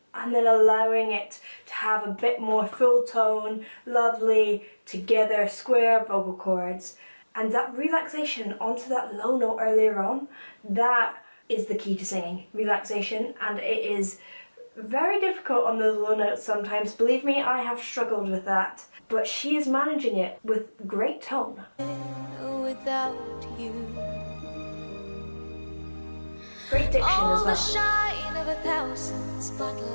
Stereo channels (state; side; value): inverted; both; correlation -1.00